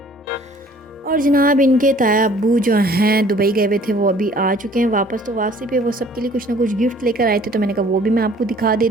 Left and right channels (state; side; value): normal; both; correlation 0.55